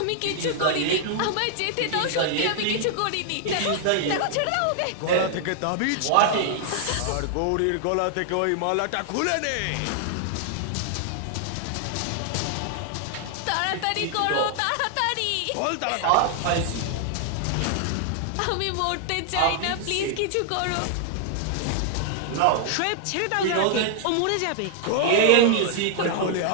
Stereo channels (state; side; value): different; both; correlation 0.00